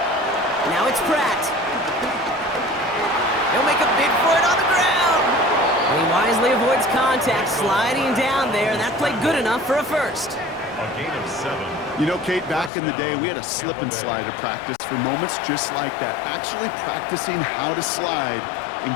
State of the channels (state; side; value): drops out; right; at 12.7 s